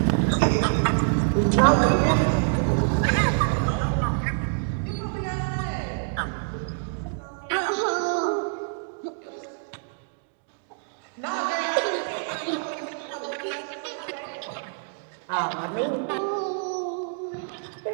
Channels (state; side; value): silent; left; 61 dB below the other